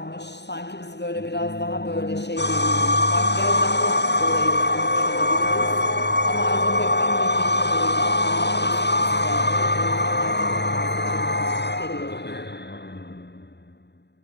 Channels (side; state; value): right; late; 0.50 ms